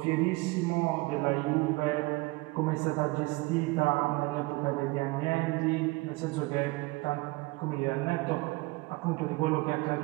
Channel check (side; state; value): left; quieter; 23.4 dB